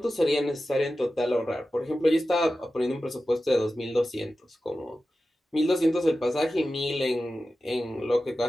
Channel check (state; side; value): normal; both; correlation 0.93